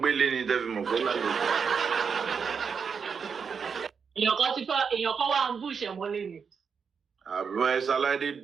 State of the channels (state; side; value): quieter; left; 6.1 dB